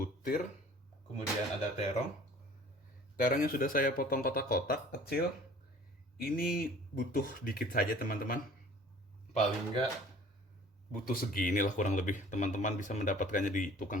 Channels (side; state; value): both; normal; correlation 0.49